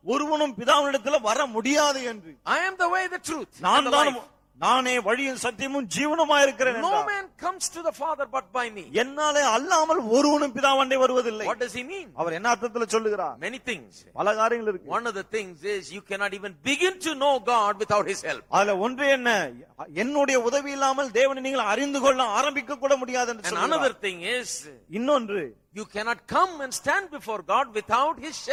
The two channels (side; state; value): both; identical; correlation 1.00